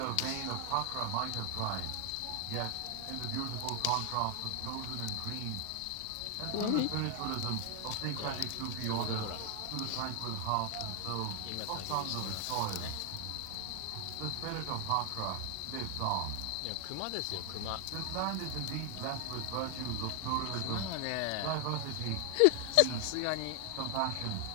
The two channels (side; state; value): both; different; correlation 0.00